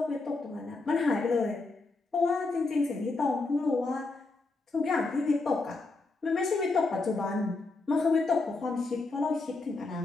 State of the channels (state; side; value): quieter; right; 3.5 dB